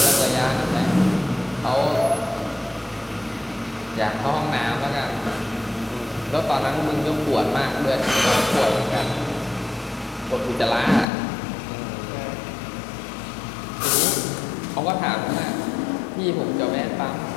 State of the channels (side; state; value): right; drops out; at 11.1 s